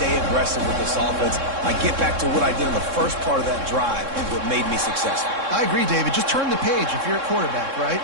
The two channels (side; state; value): left; late; 3.6 ms